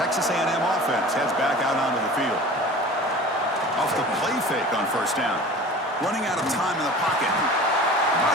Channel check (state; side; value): normal; both; correlation 0.40